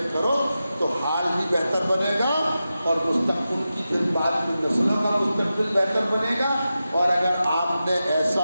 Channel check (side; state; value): both; inverted; correlation -0.92